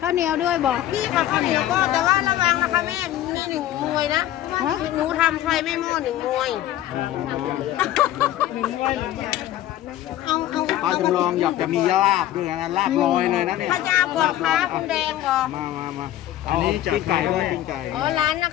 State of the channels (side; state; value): right; quieter; 13.2 dB